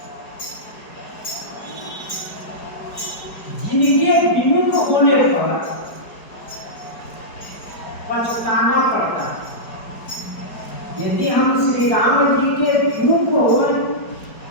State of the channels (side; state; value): right; late; 4.7 ms